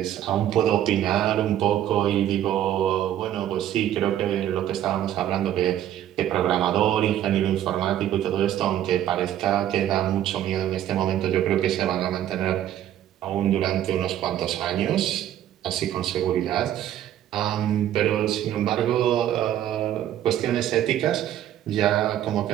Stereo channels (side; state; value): left; quieter; 11.7 dB